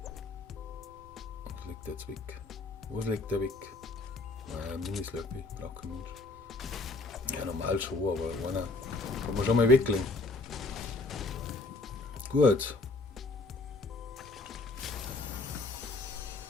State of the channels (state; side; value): quieter; right; 3.4 dB